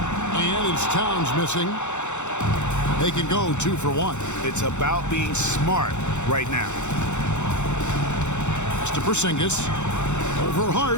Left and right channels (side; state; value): right; late; 0.83 ms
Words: it's Towns missing. They can go 2 for 1. It's about being smart right now. Pass to Porzingis. Over